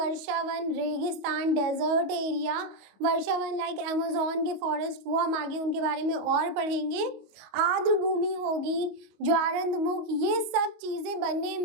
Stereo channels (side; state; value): left; late; 25 ms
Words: रेगिस्तान, डेजर्ट एरिया, वर्षावन लाइक अमेज़न के फॉरेस्ट, वो हम आगे उनके बारे में और पढ़ेंगे। आर्द्र भूमि होगी, ज्वारंदमुख, ये सब चीजें बनने